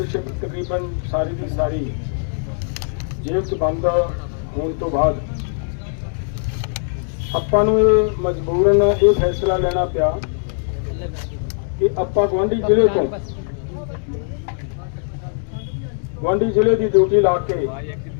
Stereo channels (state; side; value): silent; right; digital silence